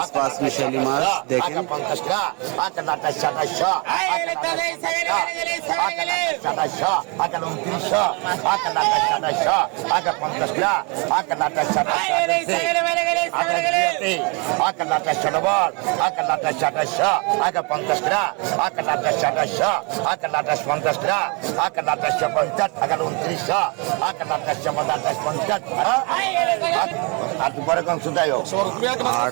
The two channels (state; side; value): quieter; left; 31.9 dB